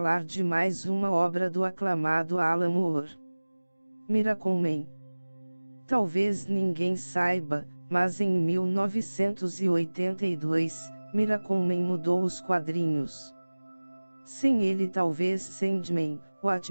de mais uma obra do aclamado Alan Moore. Miracleman. Talvez ninguém saiba, mas em 1982, Miracleman mudou os quadrinhos. Sem ele talvez Sandman,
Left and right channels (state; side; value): inverted; both; correlation -1.00